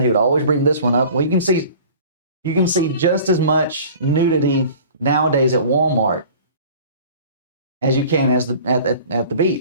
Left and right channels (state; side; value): inverted; both; correlation -0.45